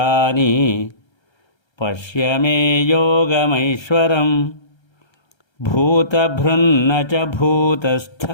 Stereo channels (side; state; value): right; late; 1.3 ms